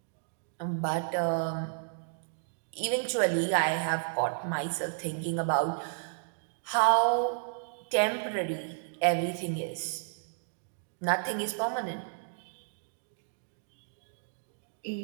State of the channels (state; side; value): silent; left; digital silence